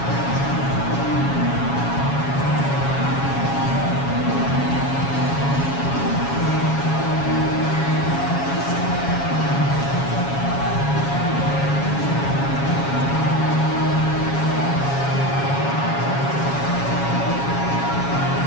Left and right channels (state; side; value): late; right; 7.2 ms